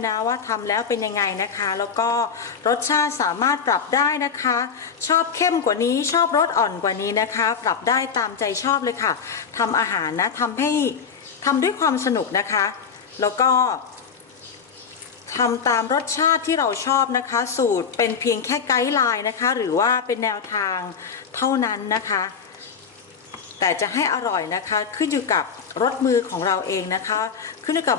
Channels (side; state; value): right; quieter; 6.4 dB